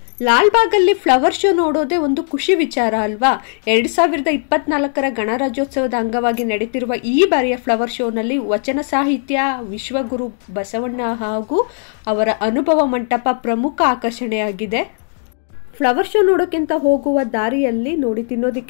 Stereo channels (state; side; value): silent; right; 62 dB below the other